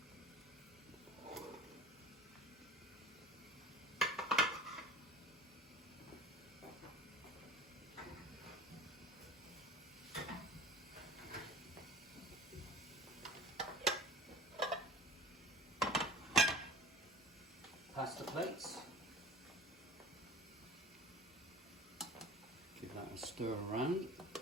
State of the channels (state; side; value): normal; both; correlation 0.42